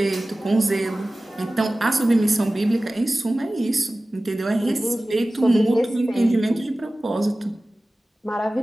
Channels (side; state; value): both; normal; correlation 0.97